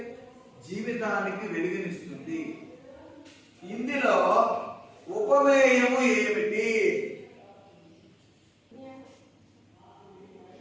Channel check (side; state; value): both; identical; correlation 1.00